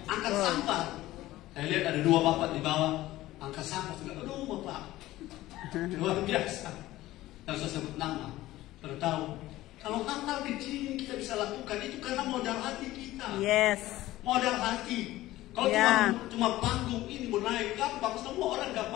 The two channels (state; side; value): quieter; right; 16.2 dB